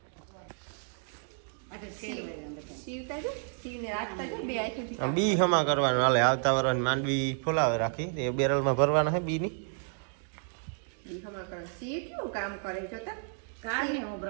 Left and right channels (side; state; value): left; silent; 57 dB below the other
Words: બી હમા કરવાનું હાલે. આવતા વર્ષ માંડવી ફોલાવે રાખી એ બેરલમાં ભરવાના હે બી ની બી હમા કરે. સી કેવું કામ કરે જોતા કાને હું